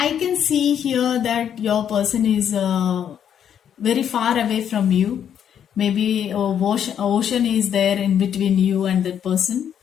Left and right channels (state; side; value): quieter; right; 9.0 dB